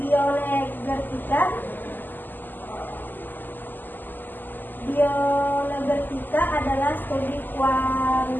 Bioenergetika adalah studi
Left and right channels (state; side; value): late; right; 0.090 ms